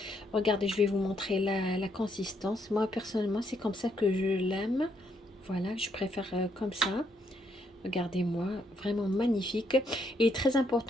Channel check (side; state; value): both; normal; correlation 0.74